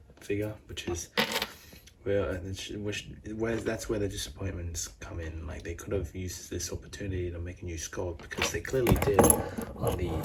figure, which is that's where the disappointments come in. Like, they could have used this opportunity to make a new sculpt, because they clearly did on the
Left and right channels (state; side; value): identical; both; correlation 1.00